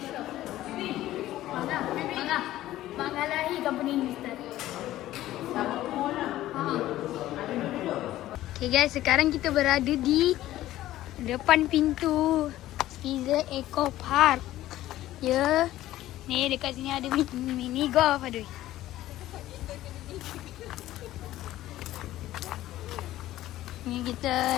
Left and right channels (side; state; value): right; quieter; 14.7 dB